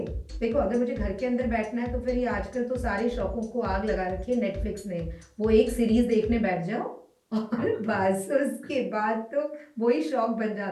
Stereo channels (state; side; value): identical; both; correlation 1.00